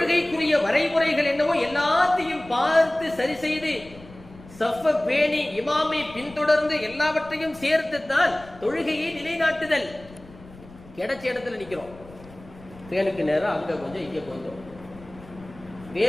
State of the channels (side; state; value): left; noise; rumble, 20 dB below the sound